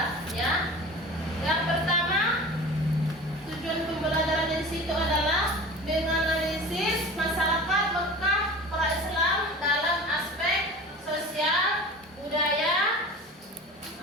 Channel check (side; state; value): both; normal; correlation 0.37